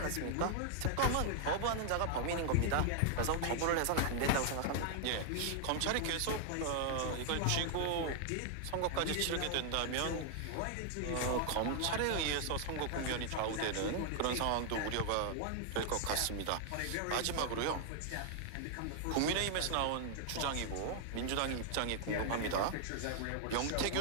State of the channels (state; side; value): different; both; correlation 0.00